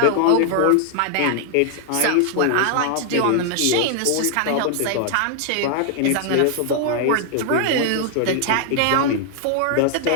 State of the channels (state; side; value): different; both; correlation 0.00